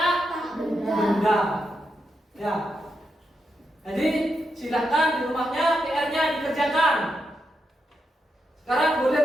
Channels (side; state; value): both; normal; correlation 0.85